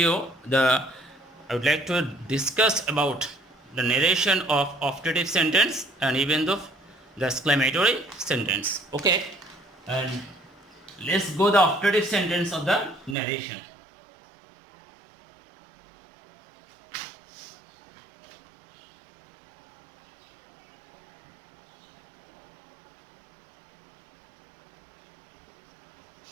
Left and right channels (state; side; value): drops out; left; at 13.2 s